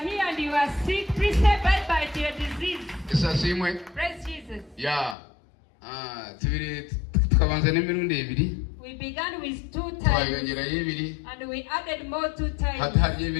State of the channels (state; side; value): drops out; right; at 5.2 s